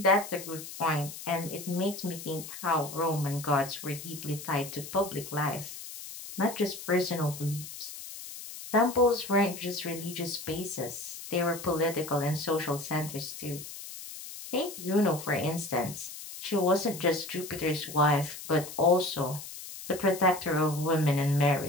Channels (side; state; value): left; noise; hiss, 12 dB below the sound